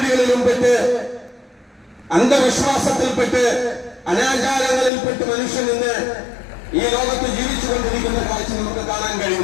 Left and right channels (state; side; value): drops out; right; at 4.9 s